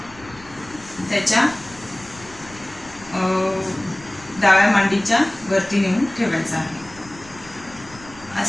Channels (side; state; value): left; noise; rumble, 21 dB below the sound